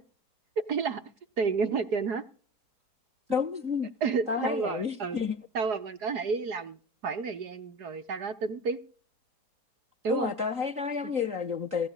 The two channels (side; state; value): left; late; 3.8 ms